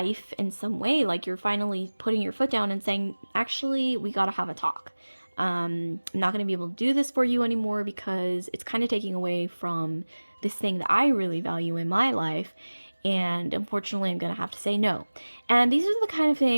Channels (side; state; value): both; inverted; correlation -1.00